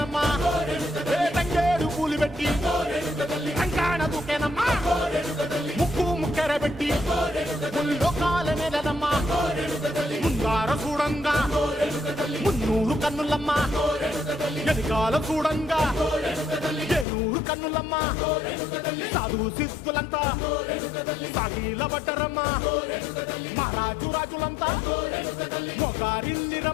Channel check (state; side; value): drops out; right; at 17.1 s